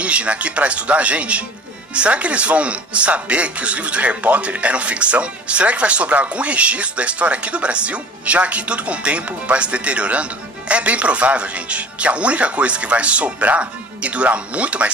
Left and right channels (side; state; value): both; normal; correlation 0.43